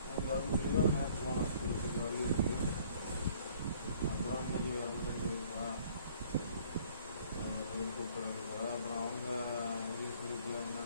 கவர்மெண்ட்லேயும் நேற்று போனேன் ஸ்கூலுக்கு கவர்மெண்ட்டுக்கு. அப்புறம் இன்னைக்கு கவர்மெண்ட் கூப்பிட்றாங்க போல. அப்புறம் அவங்க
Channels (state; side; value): inverted; both; correlation -0.57